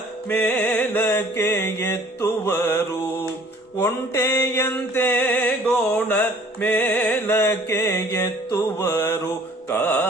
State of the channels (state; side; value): normal; both; correlation 0.54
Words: ಮೇಲಕ್ಕೆ ಎತ್ತುವರು ಒಂಟೆಯಂತೆ ಗೋಣ ಮೇಲಕ್ಕೆ ಎತ್ತುವರು